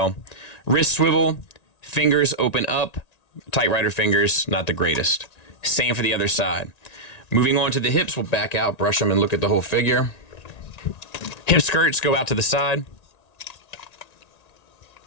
Wrist swivel, fingers open up, tight rider fingers, not the greatest. Same for the other side. Moving on to the hips, we'll back out, brush them, and look at the whole figure. Hip skirts go out to the side.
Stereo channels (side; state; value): right; late; 1.9 ms